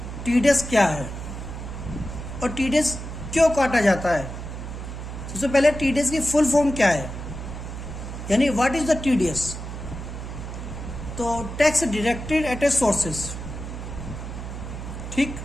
टीडीएस क्या है और टीडीएस क्यों काटा जाता है। सबसे पहले टीडीएस की फुल फॉर्म क्या है, यानी व्हाट इज द टीडीएस। तो tax deducted at A sources. ठीक,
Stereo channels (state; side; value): noise; right; hum, 8 dB below the sound